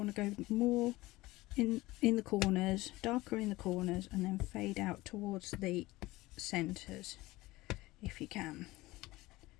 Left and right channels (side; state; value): right; quieter; 19.4 dB